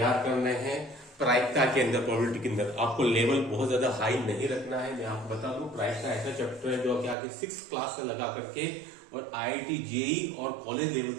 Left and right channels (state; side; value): drops out; left; at 7.2 s